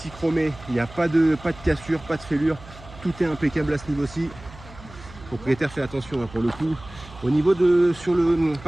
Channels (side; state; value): right; noise; hum, 19 dB below the sound